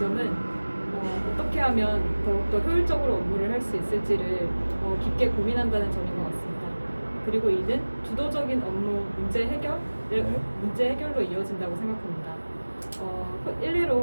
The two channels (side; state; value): both; inverted; correlation -1.00